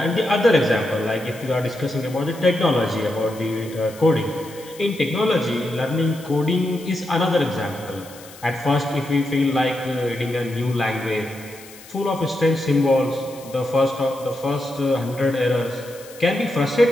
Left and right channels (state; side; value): noise; left; hiss, 20 dB below the sound